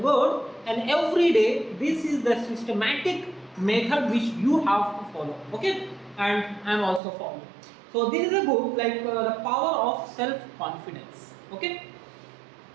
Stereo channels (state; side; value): drops out; left; at 7.0 s